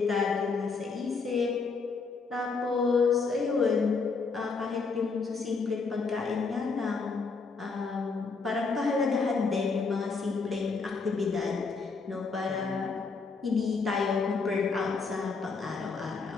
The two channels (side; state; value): right; quieter; 4.6 dB